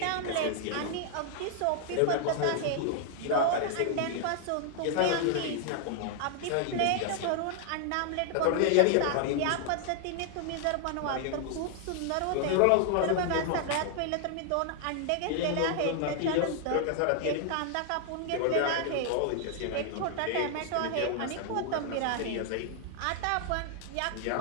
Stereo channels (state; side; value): different; both; correlation 0.00